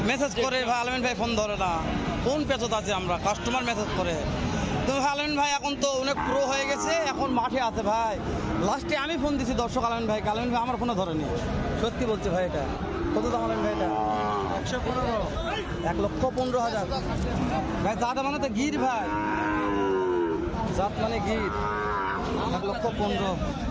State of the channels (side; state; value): both; identical; correlation 1.00